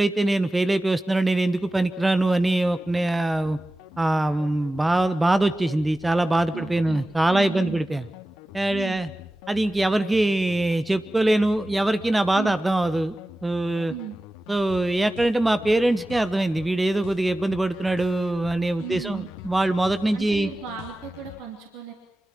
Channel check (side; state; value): both; normal; correlation 0.95